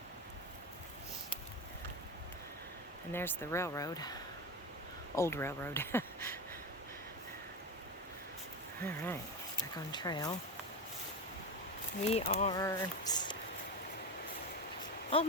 And there's the railroad. Old railroad. All right, back on trail. We are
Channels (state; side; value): normal; both; correlation 0.19